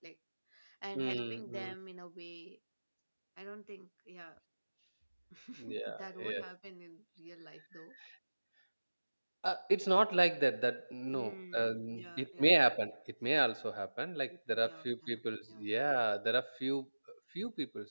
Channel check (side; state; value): both; inverted; correlation -1.00